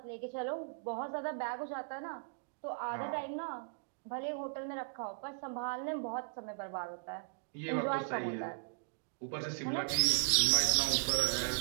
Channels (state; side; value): silent; left; digital silence